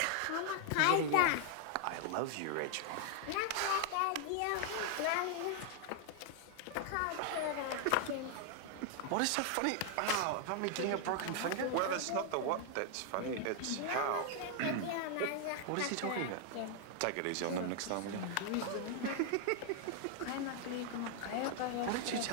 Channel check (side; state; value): both; different; correlation 0.00